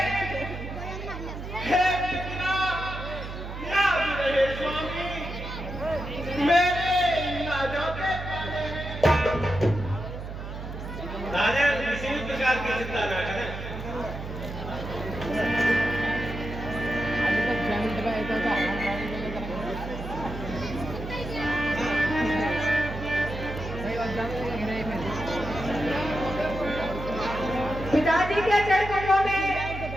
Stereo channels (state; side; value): noise; right; hum, 8 dB below the sound